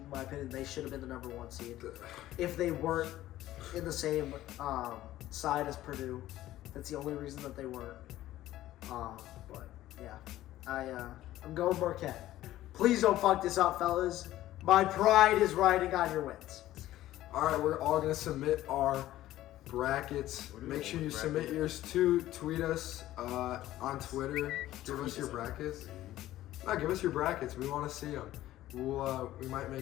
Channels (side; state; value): right; quieter; 14.6 dB